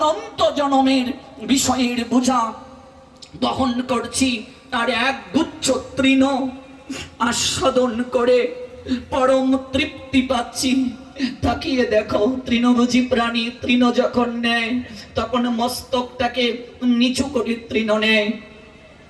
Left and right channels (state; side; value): identical; both; correlation 1.00